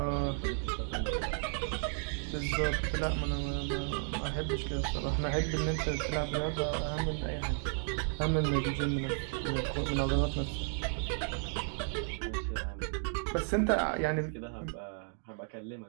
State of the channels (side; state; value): left; silent; 55 dB below the other